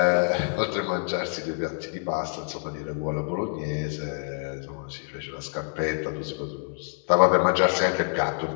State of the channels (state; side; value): silent; right; 60 dB below the other